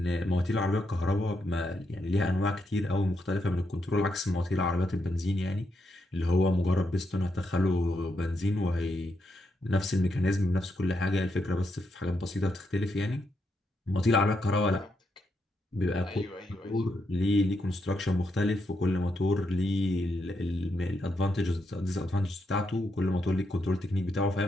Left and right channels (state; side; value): normal; both; correlation 0.81